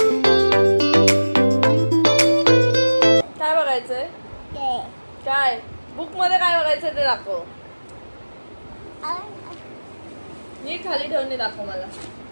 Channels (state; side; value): inverted; both; correlation -1.00